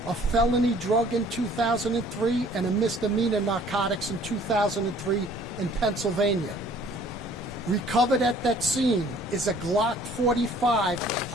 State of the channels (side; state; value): both; normal; correlation 0.55